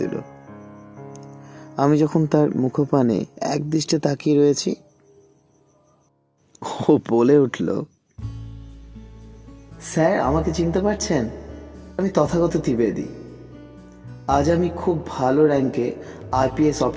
দিল। আমি যখন তার মুখপানে এক দৃষ্টে তাকিয়ে রয়েছি, ও বলে উঠল, স্যার, আমাকে চিনতে পারছেন? আমি তথাগত ত্রিবেদী। আজ আমি খুব ভালো র্যাঙ্কে আইপিএস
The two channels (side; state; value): both; identical; correlation 1.00